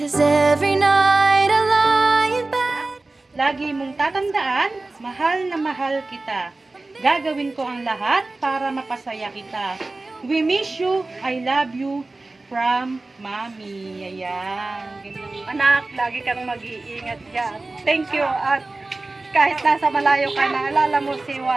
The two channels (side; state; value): left; quieter; 3.2 dB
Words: 'Cause every night I lie in bed. Lagi mong tatandaan, mahal na mahal kita. Gagawin ko ang lahat para mapasaya kita. We miss you, I love you, from Mommy. Ayan. Ganyan. Anak, lagi kang mag-iingat dyan. Thank you. At kahit nasa malayo ka, naalala mo si